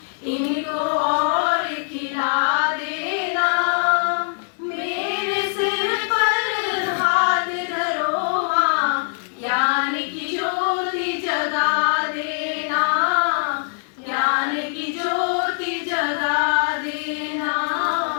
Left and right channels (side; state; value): right; silent; digital silence